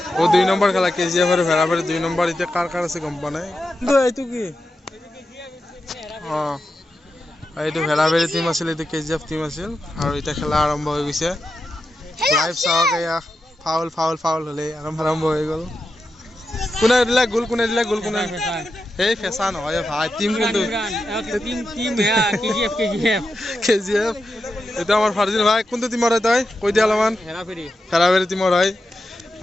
ও 2 নম্বৰ খেলা KGF আৰু ভেৰাবাৰী 2 নম্বৰ এতিয়া কাৰ আছে গম পোৱা নাই এইটো কি এইটো ভেৰাবাৰী টিম আছিল এইটো KGF টিম আছিল আৰু এতিয়া খেলা আৰম্ভ হৈ গৈছে লাইভ চাওক এয়া ফাউল হ'লে আৰম্ভ হৈ গ'ল কোনে দিলে গোল কোনে এই ফেঁচা নহয় ভাই টিম কিন্তু KGF এইটো আমাৰ ফাৰ্জিন ভাই কোনটো টিমৰ হয় তই কৈ দিয়া অলপমান ভেৰাবাৰী টিমৰ হয়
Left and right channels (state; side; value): normal; both; correlation 0.89